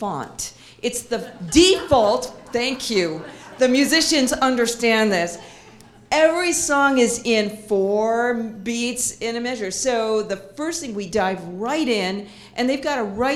It's the default, thank you. The musicians understand this. Every song is in 4 beats in a measure. So the first thing, we dive right in, and they've got to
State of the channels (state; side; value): identical; both; correlation 1.00